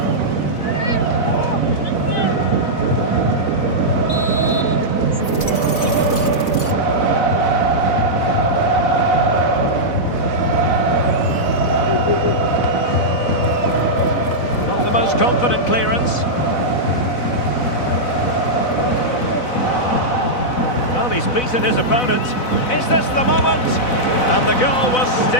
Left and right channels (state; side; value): late; right; 4.0 ms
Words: Not the most confident clearance. Well, he's beaten his opponent. Is this the moment? And the goal was